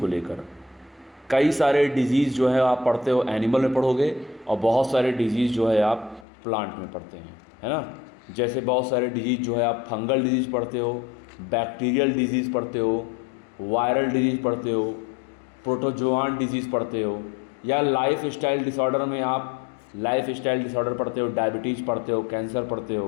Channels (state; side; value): drops out; right; at 6.2 s